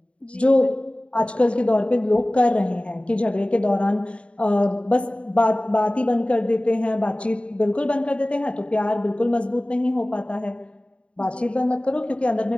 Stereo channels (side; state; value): right; late; 0.059 ms